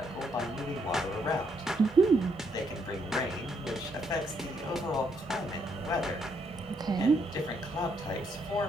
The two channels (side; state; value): both; normal; correlation 0.74